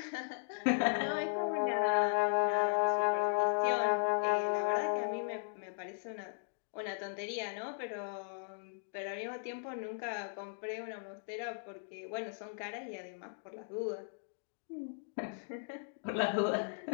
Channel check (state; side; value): silent; right; digital silence